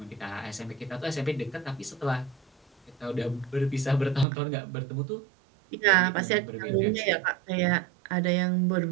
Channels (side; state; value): left; drops out; at 4.2 s